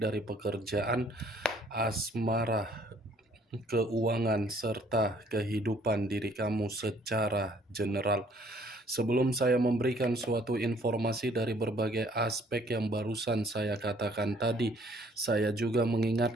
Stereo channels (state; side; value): normal; both; correlation 0.60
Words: pekerjaan, asmara, keuangan, serta kehidupan diri kamu secara general. Sebelum saya memberikan suatu informasi dari berbagai aspek yang barusan saya katakan tadi, saya juga